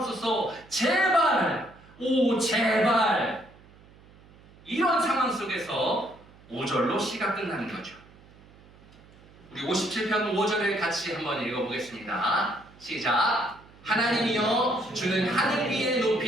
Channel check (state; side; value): noise; right; hum, 25 dB below the sound